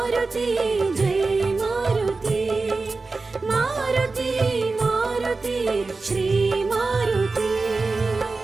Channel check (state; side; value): quieter; left; 3.8 dB